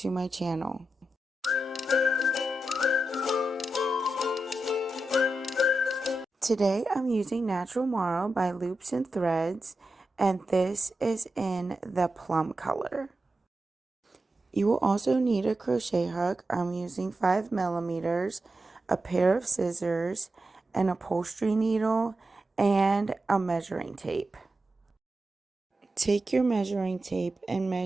my channel. Today I'm using Natural Marl by Loops and Threads, and this is in the plum color. You will also need a crochet hook. I'm using 5mm, a pair of scissors, an upholstery needle, and a measuring tape. Take your measuring tape and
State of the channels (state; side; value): normal; both; correlation 0.90